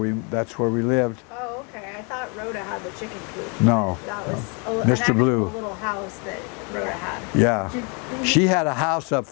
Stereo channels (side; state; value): right; quieter; 34.0 dB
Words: lived. Oh, okay. I thought Rhoda had the chicken coop. No, That was Mr. an actual Blue. little house that Rhoda had. Yeah, she had a house up